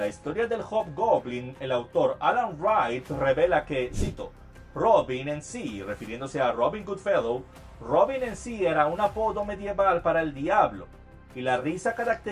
historia del Hobgoblin, el autor Alan Wright revela que, cito, Robin en sí, refiriéndose a Robin Goodfellow, Robin en sí era un apodo medieval para el diablo, y la risa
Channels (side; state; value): both; identical; correlation 1.00